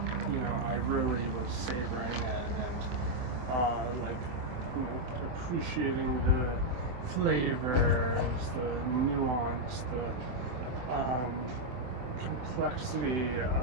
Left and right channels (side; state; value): left; late; 24 ms